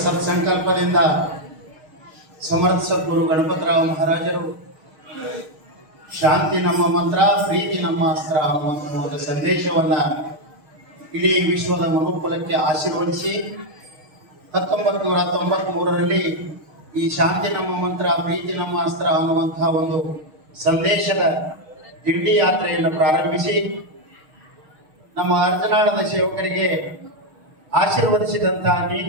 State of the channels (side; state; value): left; late; 6.4 ms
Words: ಸತ್ಸಂಕಲ್ಪದಿಂದ ಸಮರ್ಥ ಸದ್ಗುರು ಗಣಪತರಾವ್ ಮಹಾರಾಜರು ಶಾಂತಿ ನಮ್ಮ ಮಂತ್ರ, ಪ್ರೀತಿ ನಮ್ಮ ಅಸ್ತ್ರ ಅನ್ನುವಂಥ ಸಂದೇಶವನ್ನ ಇಡೀ ವಿಶ್ವದ ಮನುಕುಲಕ್ಕೆ ಆಶೀರ್ವದಿಸಿ 1993ರಲ್ಲಿ ಈ ಶಾಂತಿ ನಮ್ಮ ಮಂತ್ರ, ಪ್ರೀತಿ ನಮ್ಮ ಅಸ್ತ್ರ ಅನ್ನುವಂತಹ ಒಂದು ಸಂದೇಶದ ದಿಂಡಿ ಯಾತ್ರೆಯನ್ನು ಪ್ರಾರಂಭಿಸಿ ನಮ್ಮ ಅರ್ಧನಾಳದ ಸೇವಕರಿಗೆ ಆಶೀರ್ವದಿಸಿದಂತಹ